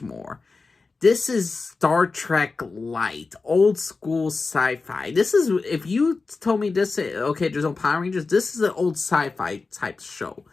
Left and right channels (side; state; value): right; quieter; 4.1 dB